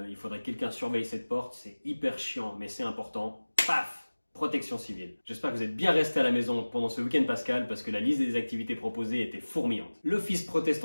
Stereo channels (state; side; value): inverted; both; correlation -1.00